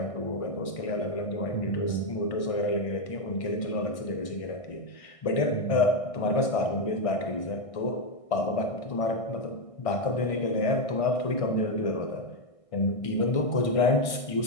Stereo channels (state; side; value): late; right; 1.6 ms